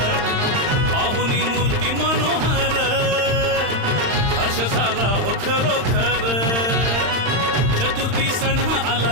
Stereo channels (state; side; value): late; left; 35 ms